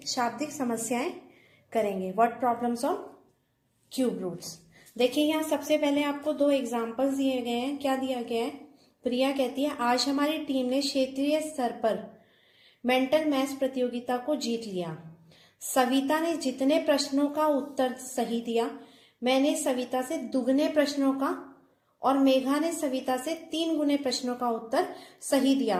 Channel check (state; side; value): identical; both; correlation 1.00